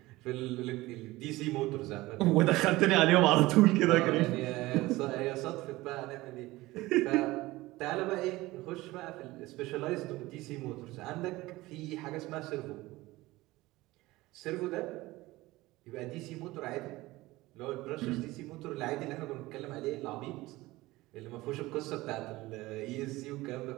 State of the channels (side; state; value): left; quieter; 19.2 dB